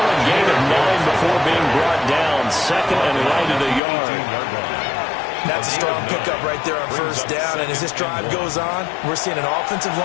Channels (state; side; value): drops out; right; at 3.8 s